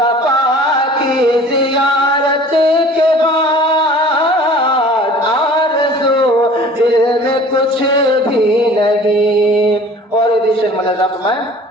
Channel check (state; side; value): normal; both; correlation 0.46